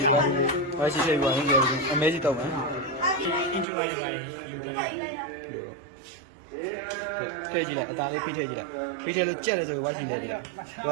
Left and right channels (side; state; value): left; drops out; at 3.7 s